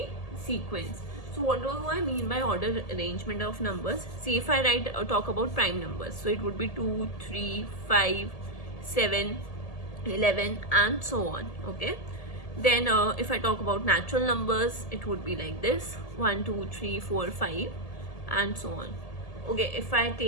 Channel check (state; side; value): late; right; 1.7 ms